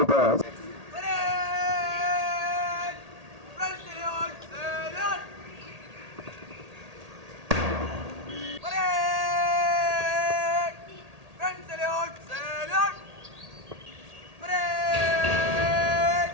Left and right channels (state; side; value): late; left; 1.8 ms